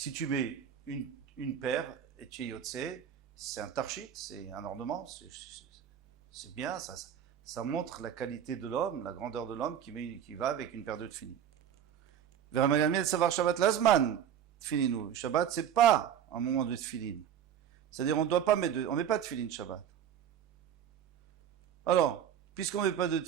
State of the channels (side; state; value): left; quieter; 9.2 dB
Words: tu mets une paire et tu es yotse, c'est un tarchit, c'est un ornement, c'est bien, ça montre la qualité de l'homme, la grandeur de l'homme qui va avec une paire de tefilin. Vers savoir Shabbat Lazman, tefilinu. Shabbat, c'est pas un moment de tefilin. C'est-à-dire, on met pas de tefilin Shabbat. Alors, puisqu'on met pas de